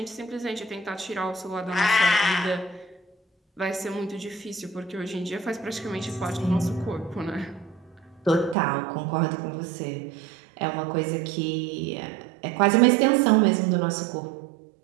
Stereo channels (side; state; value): left; drops out; at 8.6 s